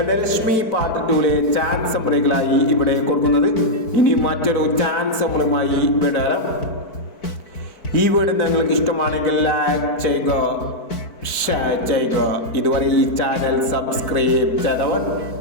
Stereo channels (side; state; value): right; late; 4.5 ms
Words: പാർട്ട് 2ലെ ചാൻസ് നമ്പറുകളായി ഇവിടെ കൊടുക്കുന്നത്. ഇനി മറ്റൊരു ചാൻസ് നമ്പറുമായി വിടാം. ഈ വീഡിയോ നിങ്ങൾക്ക് ഇഷ്ടമാണെങ്കിൽ ലൈക്ക് ചെയ്യുക, ഷെയർ ചെയ്യുക. ഇതുവരെ ഈ ചാനൽ സബ്സ്ക്രൈബ് ചെയ്തവർ